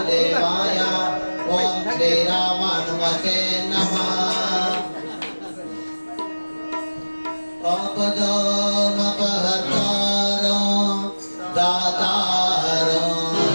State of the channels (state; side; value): inverted; both; correlation -1.00